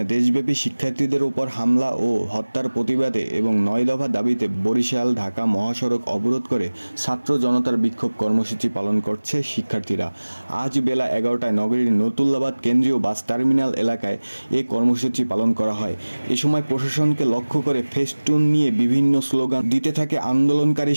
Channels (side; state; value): both; inverted; correlation -1.00